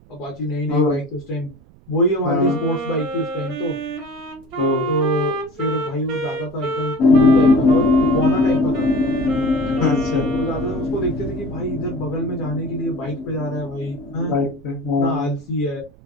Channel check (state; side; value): noise; right; rumble, 25 dB below the sound